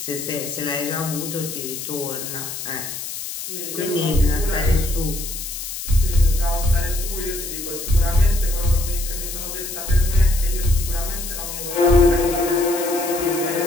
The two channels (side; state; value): left; noise; hiss, 7 dB below the sound